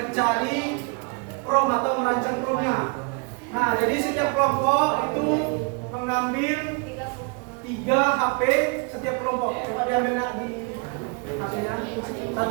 prom atau merancang promnya. Nah, jadi setiap kelompok itu mengambil 3 HP setiap kelompok. Coba diambil nak di hasilnya.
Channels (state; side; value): quieter; left; 33.9 dB